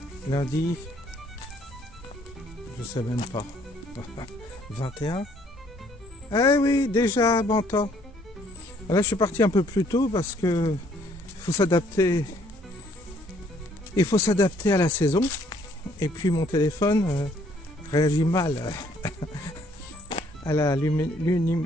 Je sais même pas. 21. Eh oui, déjà bon temps. Là je suis parti un peu plus tôt parce que faut s'adapter. Il faut s'adapter à la saison. Et puis mon téléphone réagit mal à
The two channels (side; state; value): both; normal; correlation 0.64